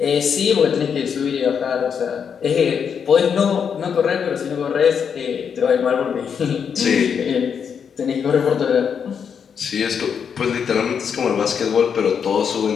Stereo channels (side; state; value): right; quieter; 7.1 dB